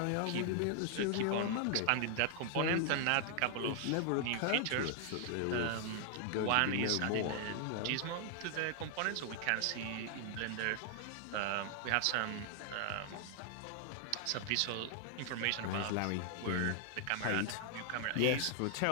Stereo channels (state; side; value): different; both; correlation 0.00